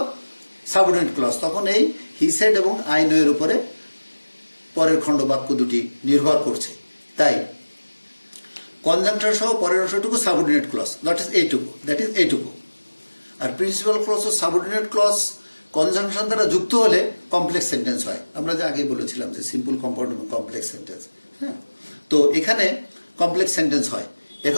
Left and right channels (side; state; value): both; inverted; correlation -1.00